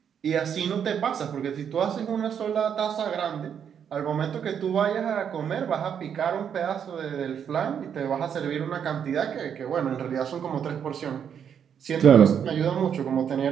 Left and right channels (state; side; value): quieter; left; 8.1 dB